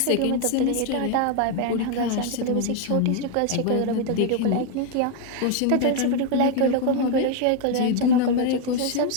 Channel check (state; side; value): different; both; correlation 0.01